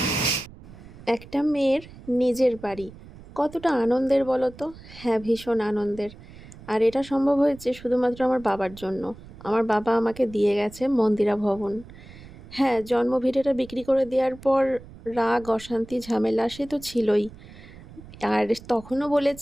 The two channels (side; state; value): right; noise; rumble, 18 dB below the sound